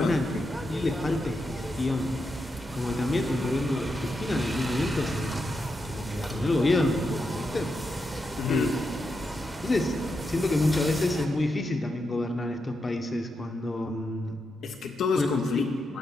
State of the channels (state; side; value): normal; both; correlation 0.85